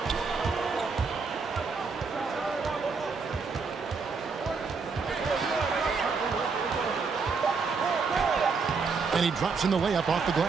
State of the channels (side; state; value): left; quieter; 4.9 dB